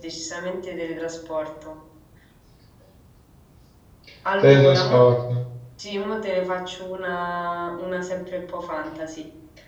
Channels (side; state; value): both; identical; correlation 1.00